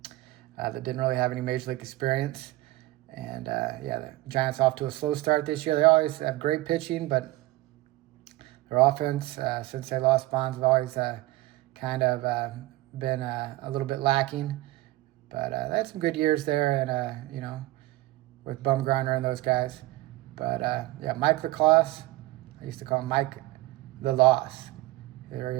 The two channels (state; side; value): quieter; left; 18.2 dB